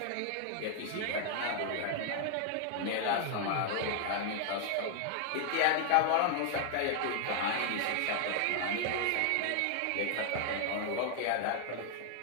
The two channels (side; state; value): both; different; correlation 0.00